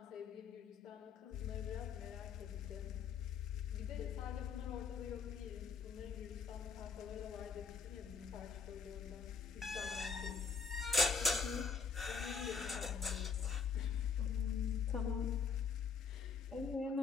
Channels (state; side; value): quieter; right; 5.5 dB